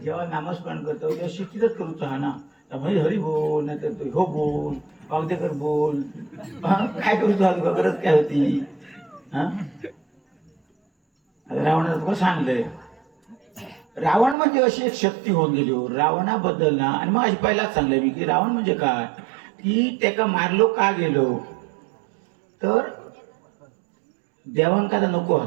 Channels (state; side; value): drops out; left; at 14.4 s